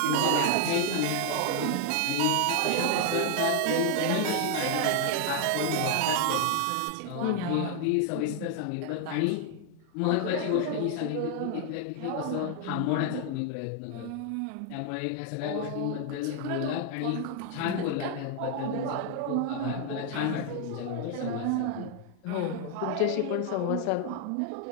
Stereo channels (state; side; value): different; both; correlation 0.00